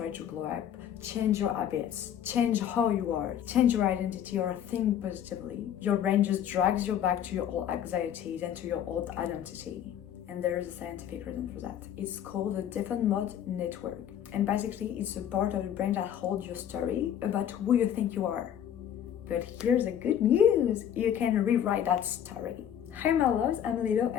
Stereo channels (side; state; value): right; quieter; 9.8 dB